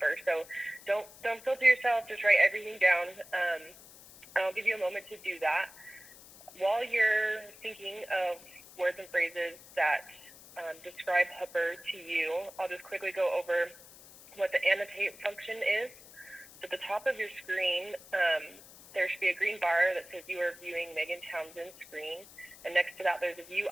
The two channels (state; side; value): noise; left; hiss, 20 dB below the sound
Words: So don't filter yourself, just write everything down. I'll give you a moment to do that. While you're thinking of words and phrases that describe Hooper to you, I'll just quickly go over what the annotate function is. At the top of your screen, there should be a green bar that says you are viewing Megan Townsend's screen. And next to that, there's a View